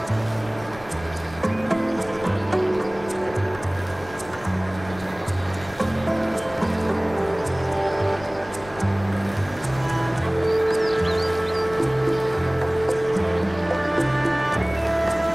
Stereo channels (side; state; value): left; noise; rumble, 19 dB below the sound